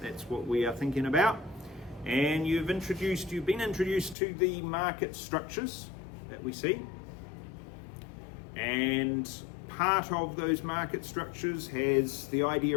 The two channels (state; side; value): drops out; right; at 4.2 s